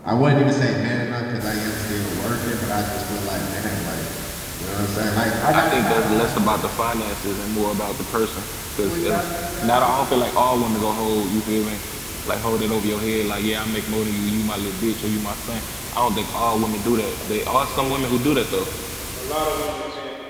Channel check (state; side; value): identical; both; correlation 1.00